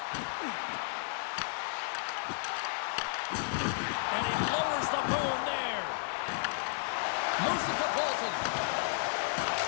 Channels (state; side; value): silent; right; digital silence